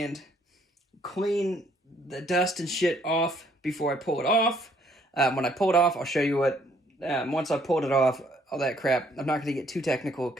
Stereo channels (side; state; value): both; normal; correlation 0.65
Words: clean the dust and shit off before I pull it off. When I pull it off, I'll show you what, once I pulled it off, all that crap. I'm not going to get too technical